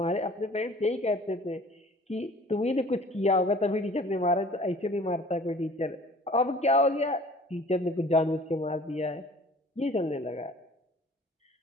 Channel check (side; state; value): both; normal; correlation 0.49